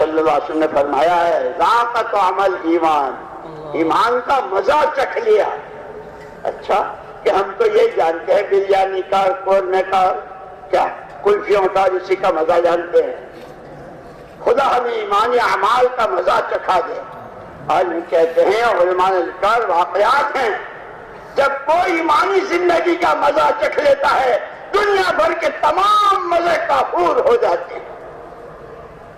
اللہ علیہ وسلم نے فرمایا ہے ذاق طعم ایمان، ایمان کا مزہ چکھ لیا. اچھا کہ ہم تو یہ جانتے ہیں بریانی کا، قورمے کا، کیا کلفیوں کا، اسی کا مزہ جانتے ہیں. خدا ہمیں ایمانی اعمال کا مزہ چکھا دے. اور کہتے ہیں علماء نے ذکر واقعات ہیں، جب کوئی ایمانی زندگی کا مزہ چکھ لیتا ہے دنیا بھر کے تمام مزے کافور ہو جاتے ہیں.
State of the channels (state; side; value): identical; both; correlation 1.00